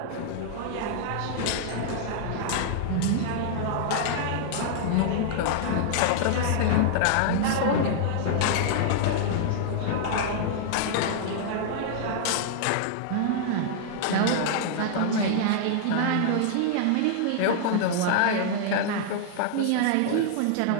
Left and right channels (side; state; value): both; different; correlation -0.01